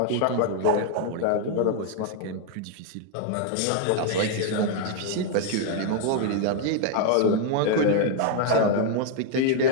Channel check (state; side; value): different; both; correlation 0.00